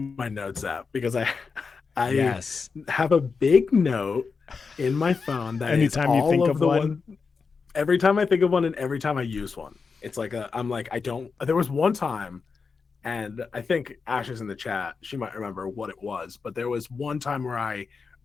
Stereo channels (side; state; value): right; quieter; 5.0 dB